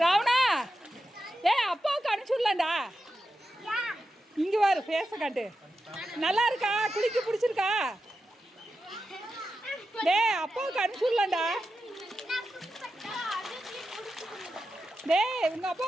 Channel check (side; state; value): both; normal; correlation 0.90